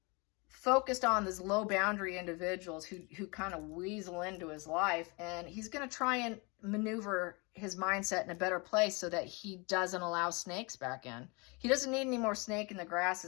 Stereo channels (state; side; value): quieter; right; 29.1 dB